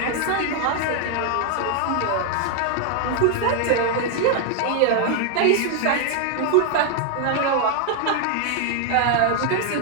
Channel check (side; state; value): both; different; correlation 0.00